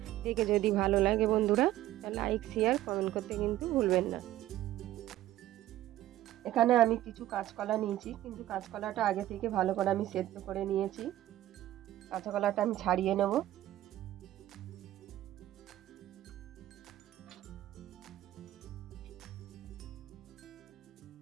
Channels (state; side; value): quieter; left; 14.2 dB